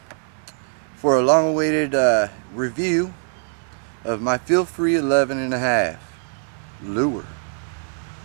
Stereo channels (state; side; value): silent; left; 57 dB below the other